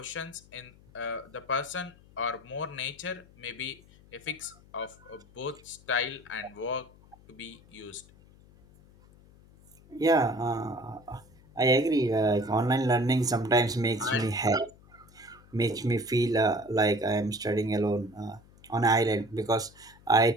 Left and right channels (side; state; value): left; noise; hum, 25 dB below the sound